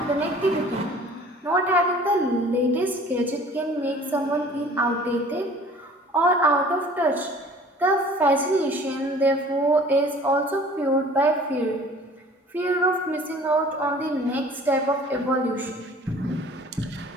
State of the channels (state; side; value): normal; both; correlation 0.49